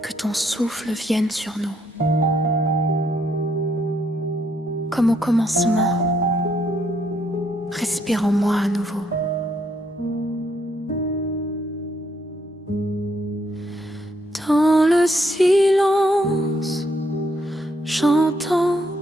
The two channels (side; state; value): both; normal; correlation 0.73